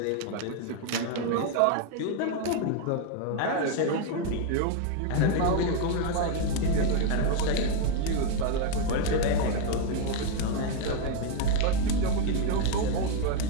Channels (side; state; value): both; different; correlation 0.01